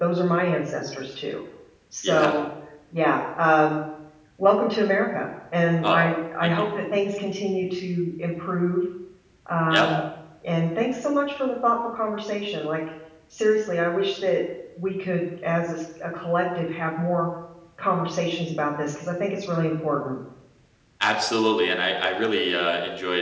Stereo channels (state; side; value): identical; both; correlation 1.00